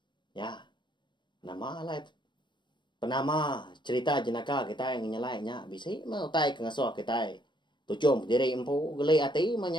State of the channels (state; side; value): late; right; 0.22 ms